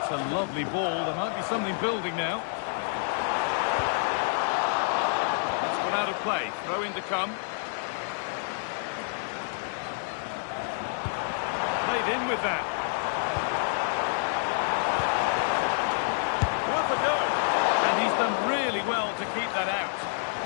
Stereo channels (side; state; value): right; silent; digital silence